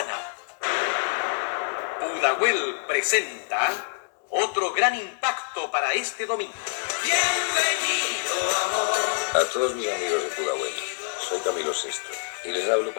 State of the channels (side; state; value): right; silent; 60 dB below the other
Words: Pudahuel presenta otro gran impacto para este domingo. A todos mis amigos de Pudahuel, soy Camilo Sesto y les hablo